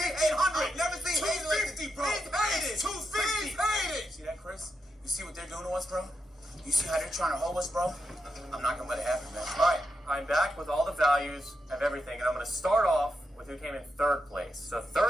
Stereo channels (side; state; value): both; normal; correlation 0.85